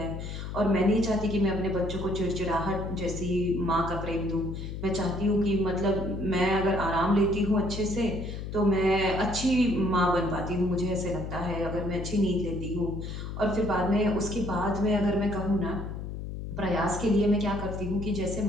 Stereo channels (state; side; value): noise; left; hum, 7 dB below the sound